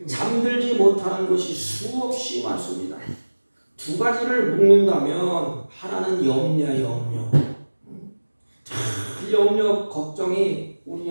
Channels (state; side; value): inverted; both; correlation -1.00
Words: 잠들지 못하는 것이 수없이 많습니다. 두 가지를 묶는다면 하나는 염려야, 염려. 염려, 걱정이